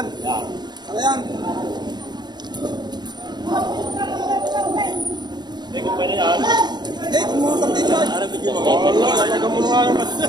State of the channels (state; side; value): late; left; 0.21 ms